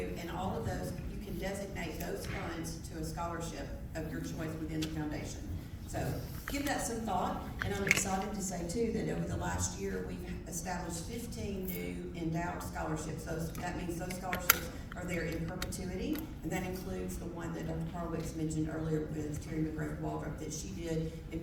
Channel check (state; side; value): identical; both; correlation 1.00